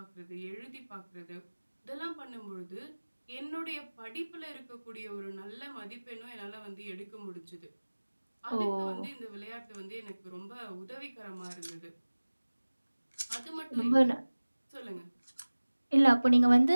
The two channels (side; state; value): both; inverted; correlation -1.00